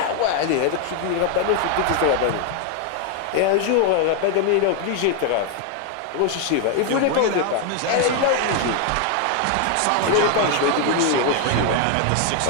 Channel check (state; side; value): different; both; correlation 0.01